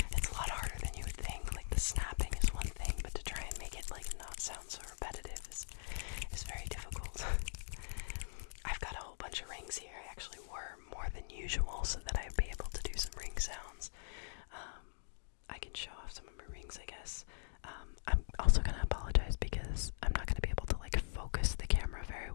It's a lot harder than you would think. Like the snapping is one thing, but to try and make it like not sound so repetitive is very difficult. I've got a whole bunch of rings here. I actually wore more than usual so that I'd be able to do some ring sounds. I can show off some of my rings, I guess. I'm also going to apologize because I'm not going to be able to like focus the camera very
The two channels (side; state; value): right; silent; digital silence